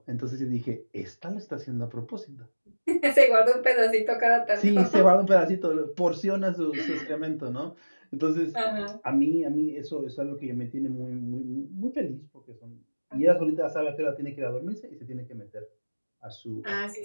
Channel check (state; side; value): inverted; both; correlation -1.00